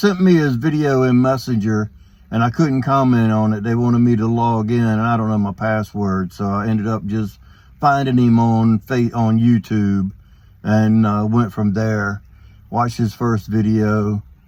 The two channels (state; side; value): identical; both; correlation 1.00